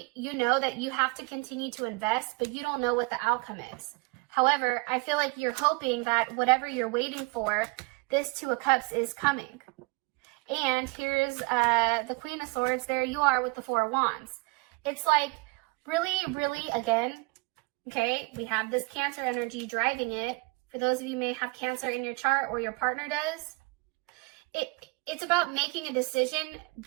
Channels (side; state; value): left; quieter; 27.5 dB